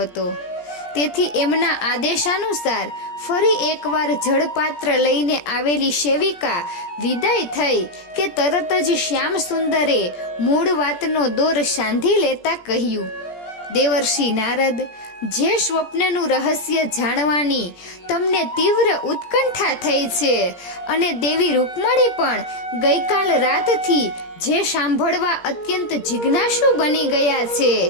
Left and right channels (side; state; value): right; late; 17 ms